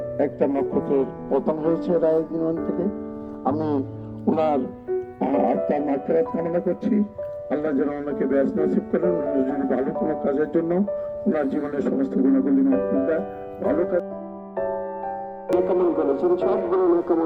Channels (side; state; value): both; identical; correlation 1.00